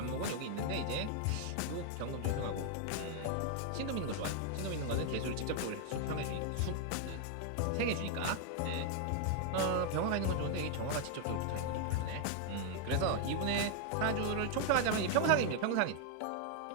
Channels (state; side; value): different; both; correlation 0.00